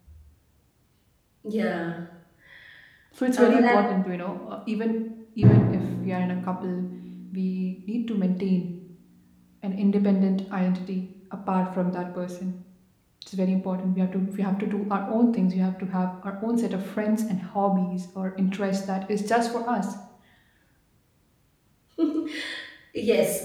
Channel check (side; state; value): both; identical; correlation 1.00